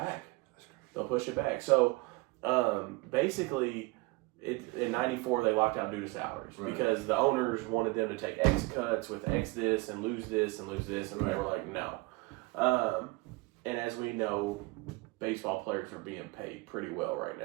They'll push it back. So, basically, in '94 they locked out due to salaries because the owners wanted them to take X cuts with X this and lose this and lose this, and they were like, no. And as we know, baseball players are being paid pretty well right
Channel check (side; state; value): left; quieter; 23.5 dB